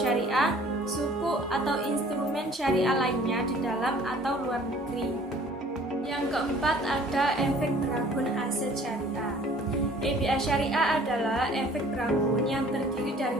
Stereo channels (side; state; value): both; normal; correlation 0.53